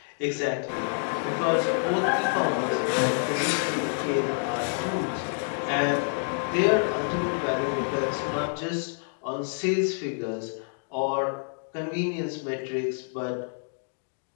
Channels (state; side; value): silent; right; digital silence